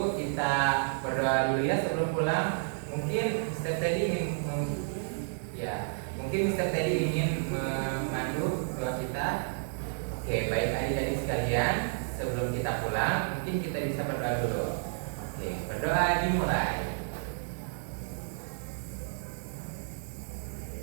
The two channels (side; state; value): left; silent; digital silence